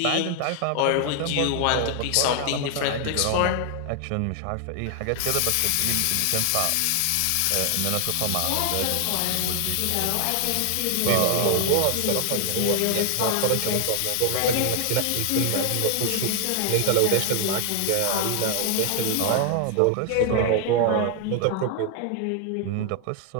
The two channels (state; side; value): different; both; correlation 0.00